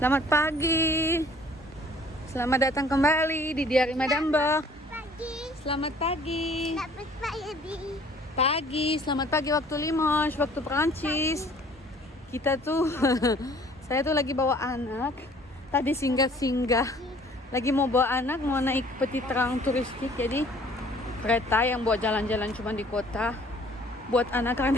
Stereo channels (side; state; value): both; normal; correlation 0.55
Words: Selamat pagi. Selamat datang kembali di Diari Madam Bo. Selamat pagi. Pagi, selamat pagi waktu Limoges, waktu Perancis. Kita tuh, saya tuh lagi bawa anak. Tadi singgah-singgah. Lagi mau bawa anak, mau naik petit train turistik. Jadi kereta yang buat jalan-jalan cuma di kota. Buat anak